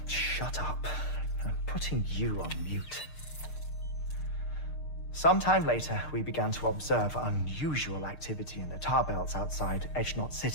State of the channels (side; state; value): right; late; 6.6 ms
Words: Shut up. I'm putting you on mute. Sometime later, we began to observe unusual activity in the tar belts outside Edgenot